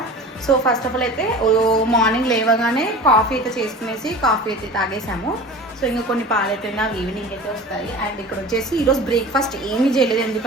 సో ఫస్ట్ ఆఫ్ ఆల్ అయితే మార్నింగ్ లేవగానే కాఫీ అయితే చేసుకునేసి కాఫీ అయితే తాగేసాము. సో ఇంకా కొన్ని పాలు అయితే ఈవినింగ్ అయితే వస్తాయి. అండ్ ఇక్కడ వచ్చేసి ఈరోజు బ్రేక్ఫాస్ట్ ఏమీ చేయలేదు,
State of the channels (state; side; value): normal; both; correlation 0.37